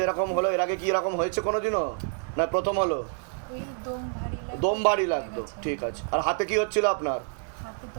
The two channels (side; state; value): left; silent; 55 dB below the other